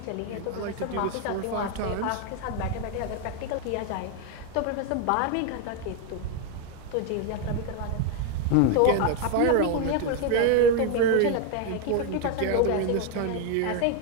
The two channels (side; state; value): both; different; correlation 0.01